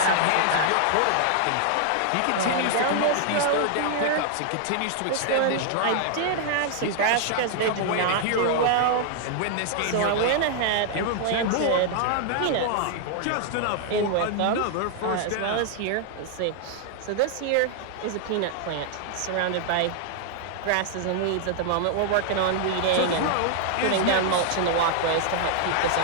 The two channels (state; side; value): different; both; correlation 0.00